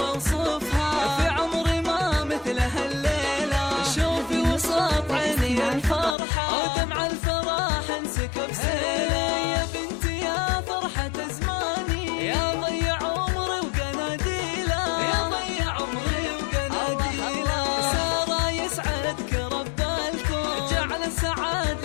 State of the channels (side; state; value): right; drops out; at 6.2 s